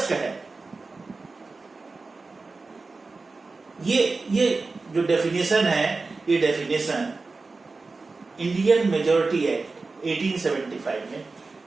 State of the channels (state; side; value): quieter; left; 3.8 dB